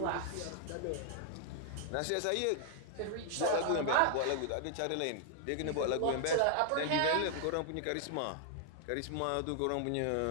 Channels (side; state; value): both; different; correlation 0.00